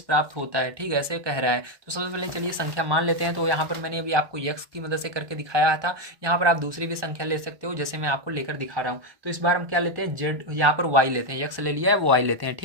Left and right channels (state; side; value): late; left; 1.1 ms